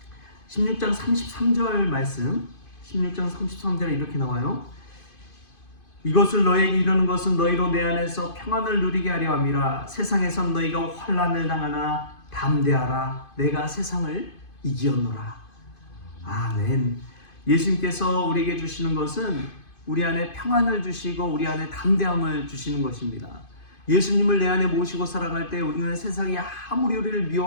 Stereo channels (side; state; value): right; late; 2.5 ms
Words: 16장 33절 말씀, 16장 33절에 이렇게 나와요. 이것을 너에게 이르는 것은 너희로 내 안에서 평안을 누리게 하려 함이라. 세상에선 너희가 환난을 당하나 담대하라. 내가 세상을 이기었노라. 아멘. 예수님께서 우리에게 주시는 것은 우리 안에 평안을 주시고 우리 안에 담대함을 주시는 것입니다. 예수님을 내 안에 모시고 살아갈 때 우리는 세상이 아무리 우리를